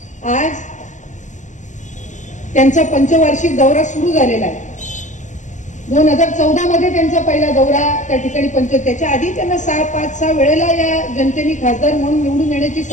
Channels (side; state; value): right; late; 0.36 ms